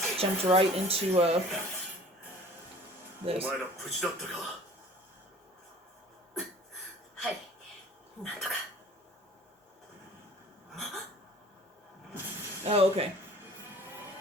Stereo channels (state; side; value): normal; both; correlation 0.48